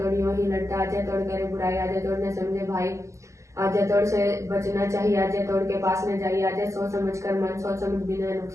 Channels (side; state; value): left; late; 0.15 ms